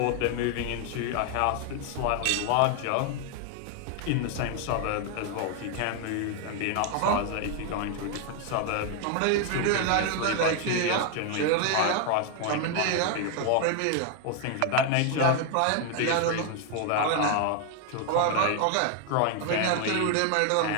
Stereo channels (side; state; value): both; different; correlation 0.01